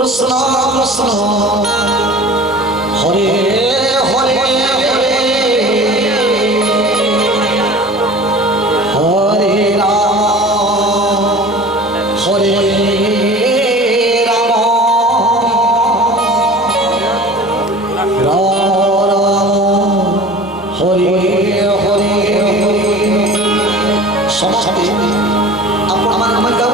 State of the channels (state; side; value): normal; both; correlation 0.40